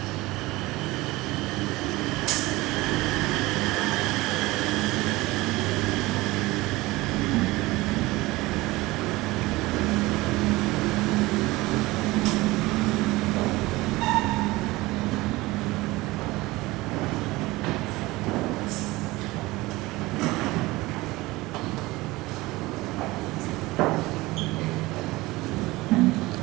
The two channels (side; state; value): left; quieter; 20.3 dB